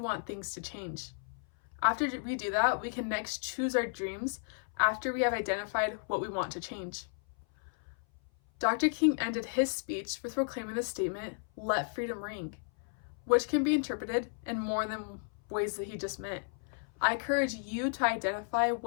things to change. After we do that, we can next choose our dreams after we have identified what we want to change. Dr. King ended his speech with proclaiming the statement, "Let freedom ring," which can be interpreted in more than ways that he just meant. I encourage you to identify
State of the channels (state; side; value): silent; right; 55 dB below the other